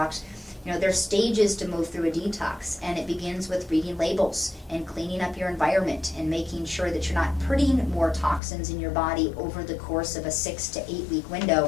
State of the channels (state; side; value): drops out; right; at 8.4 s